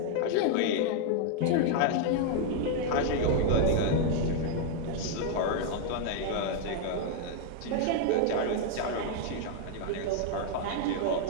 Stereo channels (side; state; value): both; different; correlation 0.00